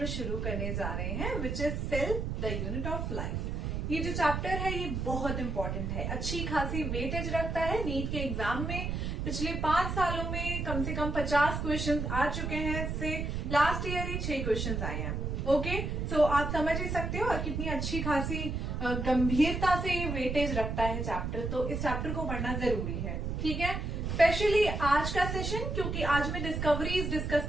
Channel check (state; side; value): noise; right; rumble, 2 dB below the sound